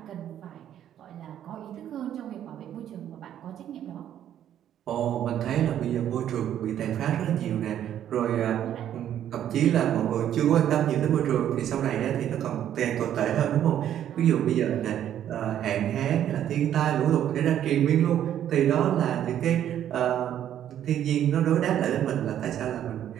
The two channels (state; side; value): quieter; left; 10.7 dB